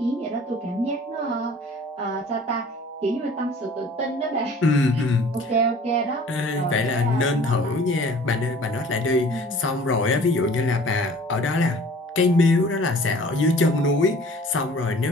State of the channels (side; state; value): both; normal; correlation 0.49